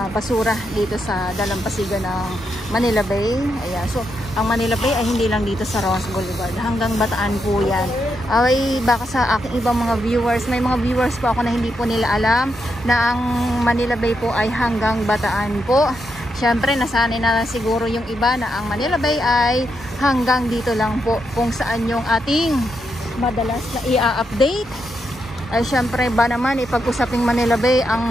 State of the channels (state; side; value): normal; both; correlation 0.82